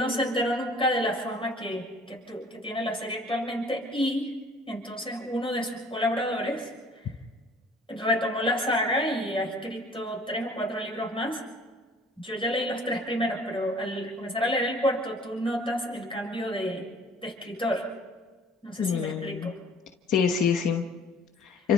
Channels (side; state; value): both; normal; correlation 0.53